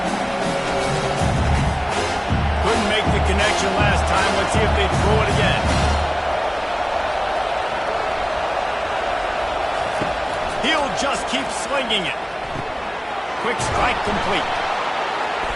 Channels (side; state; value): both; identical; correlation 1.00